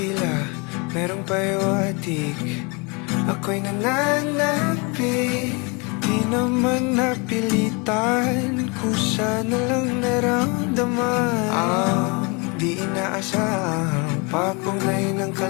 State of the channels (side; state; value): right; quieter; 30.9 dB